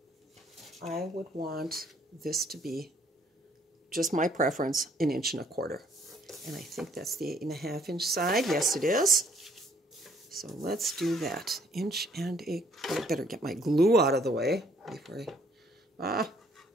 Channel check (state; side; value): normal; both; correlation 0.64